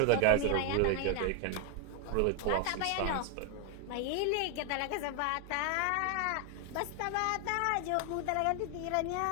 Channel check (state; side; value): different; both; correlation 0.01